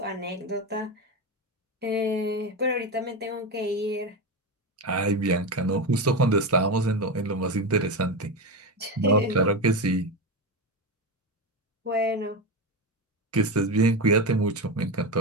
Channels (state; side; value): normal; both; correlation 0.16